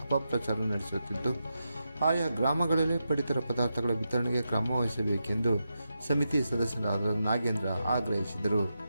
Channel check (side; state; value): both; inverted; correlation -0.87